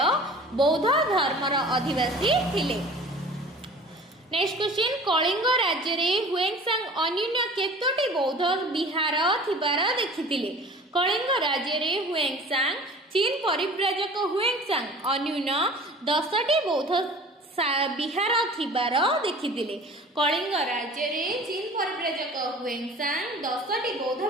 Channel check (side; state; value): both; normal; correlation 0.43